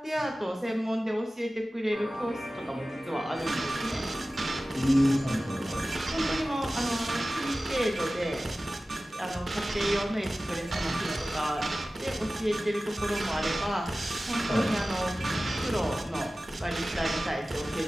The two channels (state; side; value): normal; both; correlation 0.96